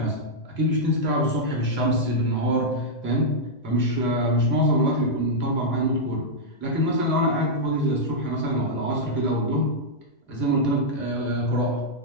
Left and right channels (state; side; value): late; right; 2.0 ms